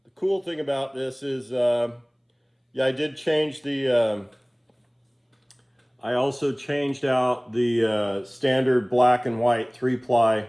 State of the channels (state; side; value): identical; both; correlation 1.00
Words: the cool thing about this is, yeah, I did change the, I also changed out the standard black and white 3-ply